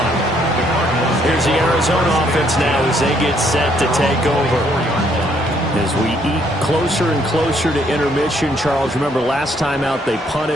Here's the Arizona offense now as they get set to take over. As we eat closer and closer to intermission, Charles, remember last time out they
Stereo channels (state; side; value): normal; both; correlation 0.68